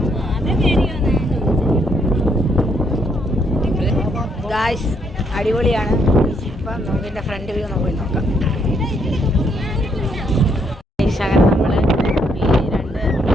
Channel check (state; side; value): normal; both; correlation 0.72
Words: ഗായ്സ് അടിപൊളിയാണ്. ഇപ്പം നമുക്കിൻ്റെ ഫ്രണ്ട് വ്യൂ പോയി നോക്കാം. അങ്ങനെ നമ്മൾ ഈ രണ്ട്